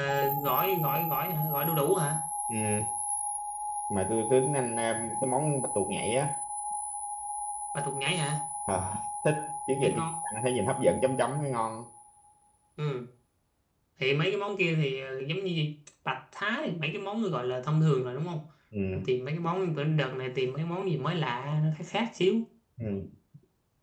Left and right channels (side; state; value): both; identical; correlation 1.00